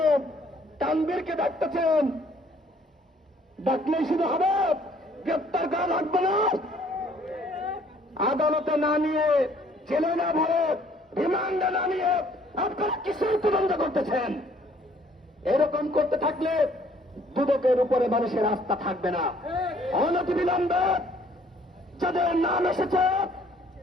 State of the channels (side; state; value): both; normal; correlation 0.60